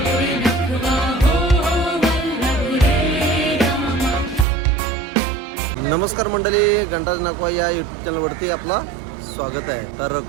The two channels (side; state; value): left; drops out; at 4.5 s